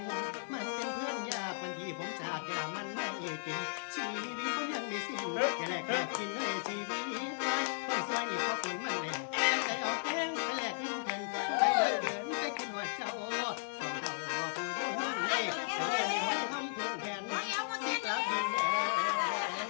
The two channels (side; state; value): right; silent; 54 dB below the other